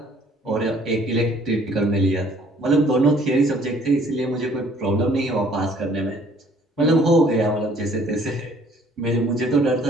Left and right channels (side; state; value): both; normal; correlation 0.58